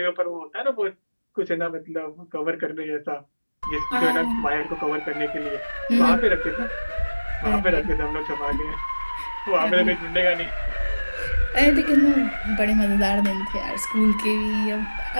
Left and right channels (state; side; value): inverted; both; correlation -1.00